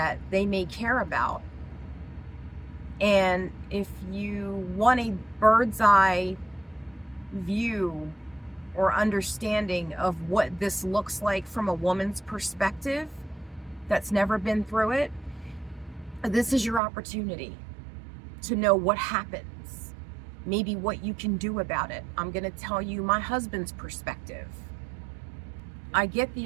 they may care about. And if you want a bird's eye view or understanding of what this looks like from a woman's perspective that's never been through it, this is your opportunity to know what happens, maybe what you can do about it. I'm going to tell you my husband's perspective. I get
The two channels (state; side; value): drops out; left; at 16.8 s